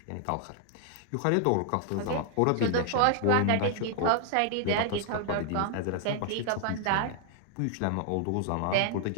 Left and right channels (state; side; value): different; both; correlation 0.00